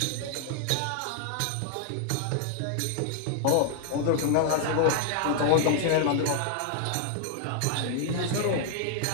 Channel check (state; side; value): different; both; correlation 0.00